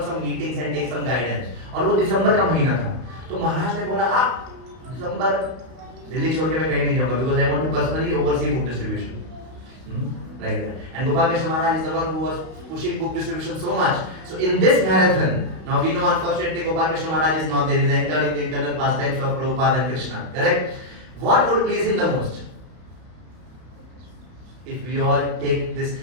some meetings and take some guidance, और वो दिसंबर का महीना था। तो महाराज ने बोला आप दिसंबर दिल्ली छोड़ के मैं कहीं नहीं जाऊंगा because I want to personally oversee book distribution like that. And Gopal Krishna Maharaj is the one who was pushing book distribution so much. So in this marathon, now we know unfortunately Gopal Krishna Maharaj is not there. He is entered in the internal pastimes of Prabhupada and Krishna. Correct? What would please him the most? If we all take this,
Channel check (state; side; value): late; left; 32 ms